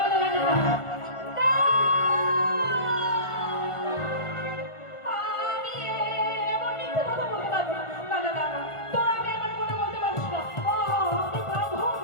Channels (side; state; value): right; late; 1.4 ms